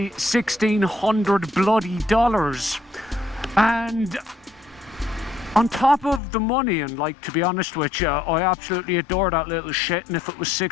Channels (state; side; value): drops out; right; at 6.2 s